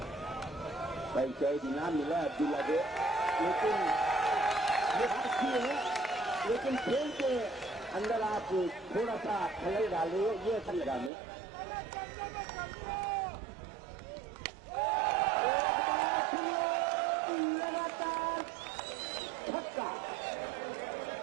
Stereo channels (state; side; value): drops out; left; at 11.1 s